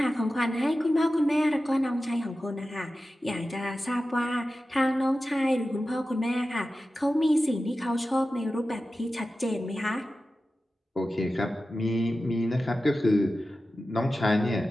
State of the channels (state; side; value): normal; both; correlation 0.94